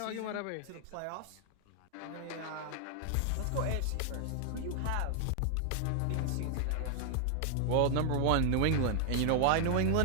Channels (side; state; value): both; different; correlation 0.00